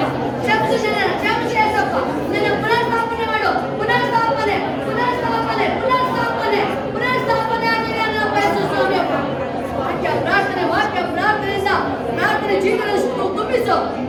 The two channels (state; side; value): identical; both; correlation 1.00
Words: ಕ್ಷಮಿಸು ಏಸಪ್ಪ. ನನ್ನ ಪುನರ್ಸ್ಥಾಪನೆ ಮಾಡು, ಪುನರ್ಸ್ಥಾಪನೆ ಆಗಲಿ ನನ್ನ ಬಯಸು ಸ್ವಾಮಿಯಪ್ಪ. ವಾಕ್ಯ ಪ್ರಾರ್ಥನೆ ಜೀವನ ತುಂಬಿಸು